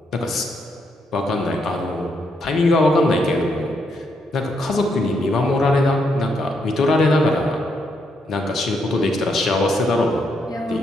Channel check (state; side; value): normal; both; correlation 0.77